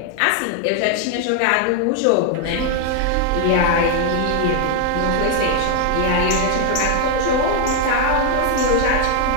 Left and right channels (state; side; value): different; both; correlation 0.00